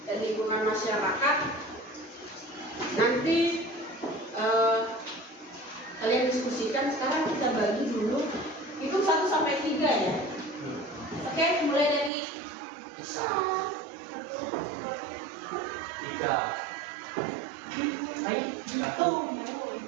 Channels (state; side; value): drops out; left; at 12.1 s